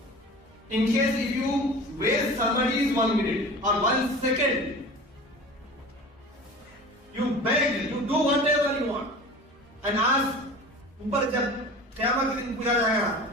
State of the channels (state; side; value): normal; both; correlation 0.38